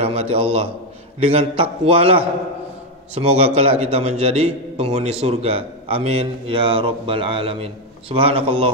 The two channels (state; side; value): normal; both; correlation 0.06